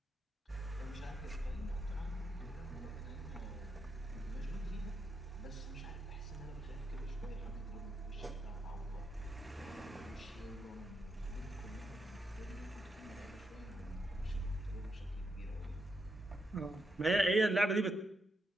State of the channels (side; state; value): both; normal; correlation 0.82